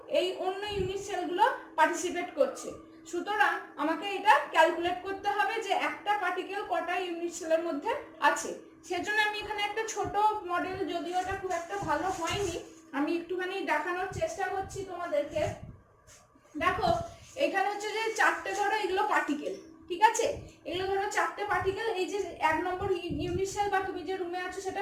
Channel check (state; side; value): identical; both; correlation 1.00